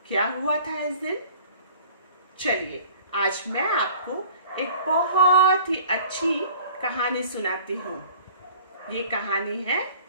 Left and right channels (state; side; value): inverted; both; correlation -0.48